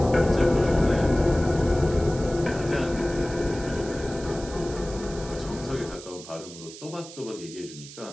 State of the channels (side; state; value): right; noise; hiss, 15 dB below the sound